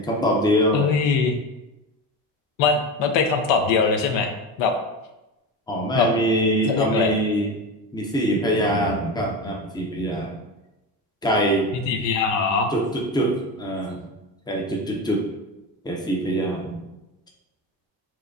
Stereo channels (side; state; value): both; normal; correlation 0.23